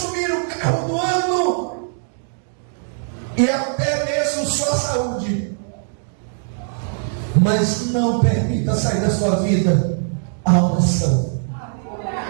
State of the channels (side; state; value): left; silent; digital silence